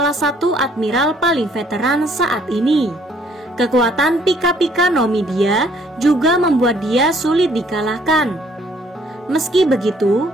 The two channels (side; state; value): both; normal; correlation 0.63